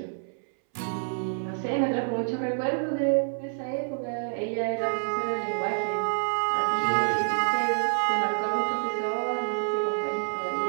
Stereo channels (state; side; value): silent; left; 60 dB below the other